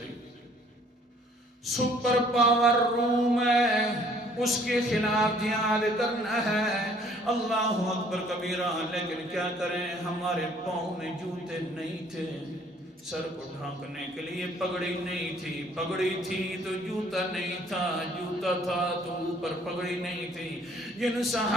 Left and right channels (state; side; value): normal; both; correlation 0.59